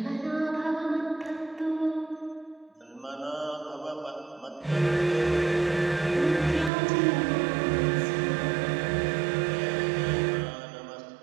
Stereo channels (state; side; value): drops out; left; at 6.7 s